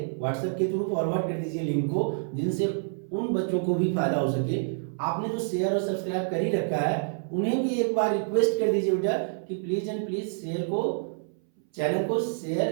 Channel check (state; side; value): silent; left; 60 dB below the other